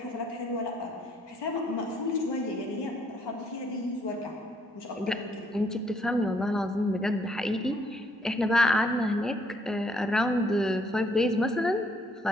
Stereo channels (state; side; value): normal; both; correlation 0.68